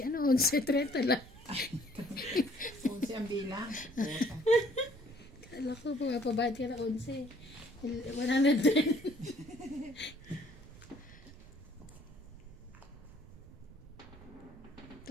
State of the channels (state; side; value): noise; right; rumble, 19 dB below the sound